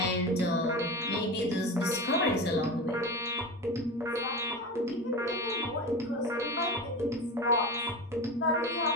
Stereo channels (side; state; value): both; normal; correlation 0.26